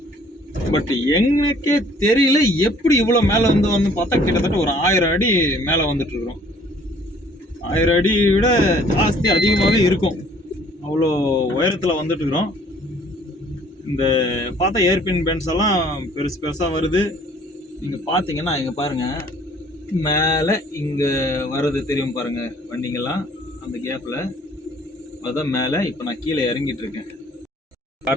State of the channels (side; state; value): both; normal; correlation 0.57